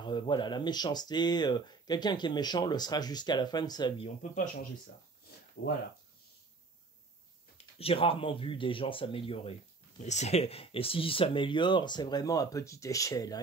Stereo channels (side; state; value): left; quieter; 4.1 dB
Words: voilà, la méchanceté, quelqu'un qui est méchant le sera jusqu'à la fin de sa vie. On ne peut pas changer ça. Voilà. J'ai rarement vu des gens s'améliorer. Et s'ils s'améliorent, c'est vraiment à petite échelle.